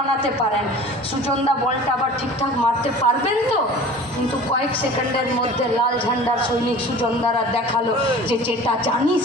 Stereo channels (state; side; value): normal; both; correlation 0.41